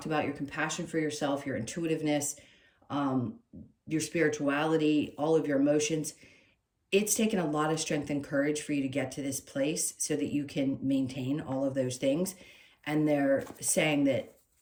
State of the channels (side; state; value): both; identical; correlation 1.00